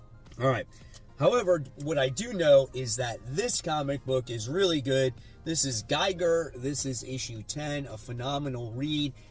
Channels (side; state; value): both; identical; correlation 1.00